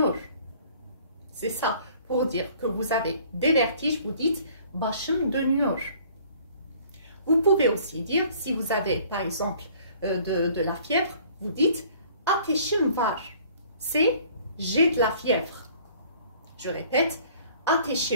C'est ça, pour dire que vous avez des vertiges, vous dites başım dönüyor. Vous pouvez aussi dire, si vous avez par exemple de la fièvre, vous dites ateşim var. C'est j'ai de la fièvre. Je répète,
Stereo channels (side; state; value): both; inverted; correlation -0.54